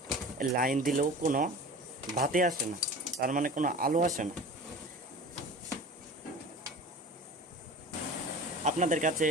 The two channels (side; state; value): both; normal; correlation 0.38